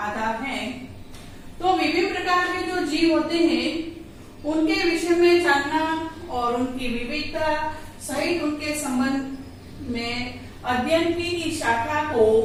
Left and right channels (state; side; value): identical; both; correlation 1.00